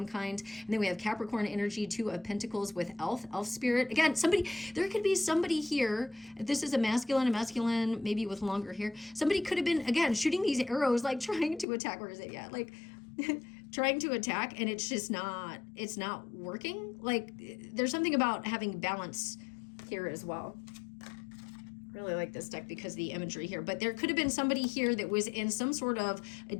kind. And then we have Capricorn energy, 2 of Pentacles with elf spirit. Again, there could be somebody here. If this is a masculine, maybe with longer hair. Somebody could have been, again, shooting these arrows, like trying to attack. Where is it? Yeah, like trying to attack, and it's not working. Like, there's something about having balance here as well. Really like this deck because of the imagery here, but there could have been somebody here that was in some sort of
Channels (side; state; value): right; drops out; at 11.7 s